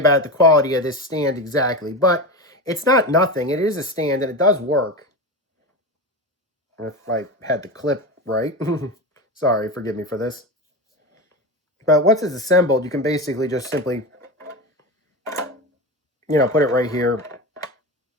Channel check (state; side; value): normal; both; correlation 0.22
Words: the quality of this stand exactly, but it's not nothing. It is a stand, and it does work. If I had the clip right. Sorry, forgive me for this. But once it's assembled, you can basically just simply, put it right here.